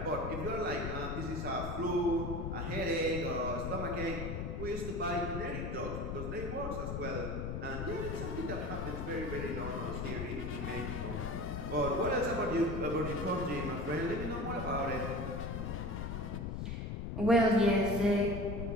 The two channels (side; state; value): left; noise; rumble, 4 dB below the sound